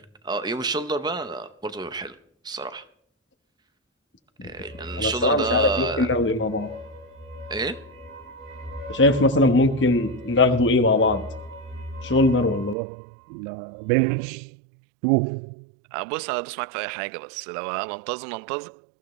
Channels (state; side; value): drops out; left; at 12.8 s